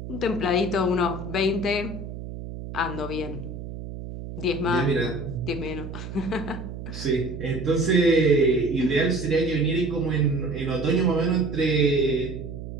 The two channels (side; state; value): right; noise; hum, 9 dB below the sound